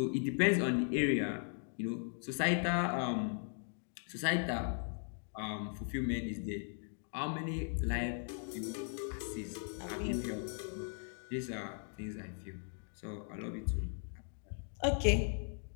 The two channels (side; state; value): right; silent; 52 dB below the other